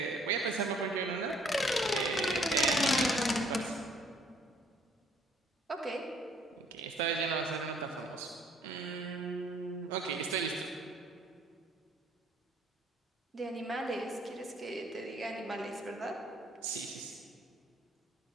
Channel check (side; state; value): both; normal; correlation 0.61